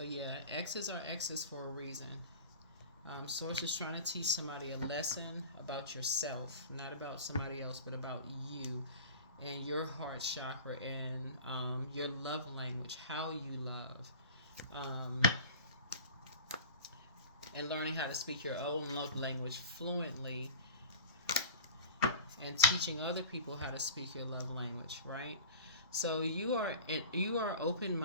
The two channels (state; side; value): inverted; both; correlation -0.36